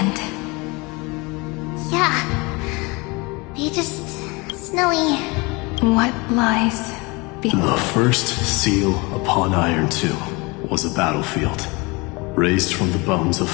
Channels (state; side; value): quieter; right; 26.2 dB